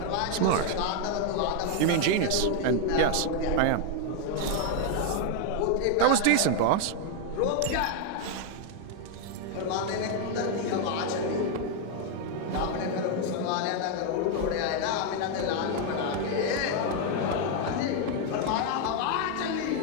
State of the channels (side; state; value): both; different; correlation 0.00